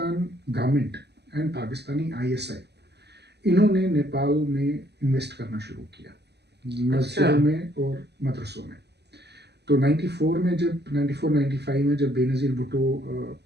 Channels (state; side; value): late; left; 0.49 ms